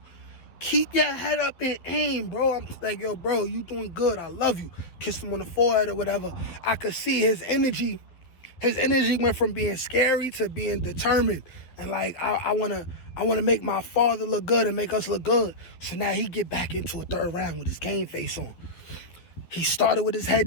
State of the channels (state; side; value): late; right; 12 ms